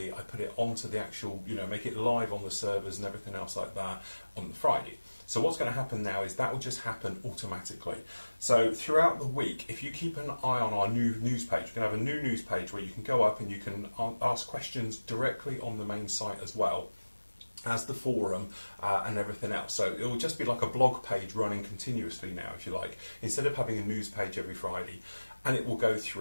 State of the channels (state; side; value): inverted; both; correlation -1.00